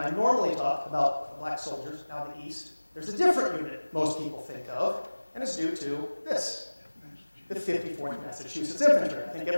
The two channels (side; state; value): both; inverted; correlation -1.00